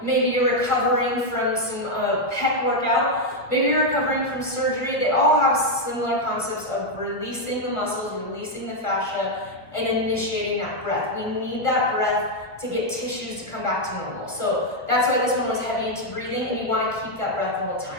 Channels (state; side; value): late; right; 1.3 ms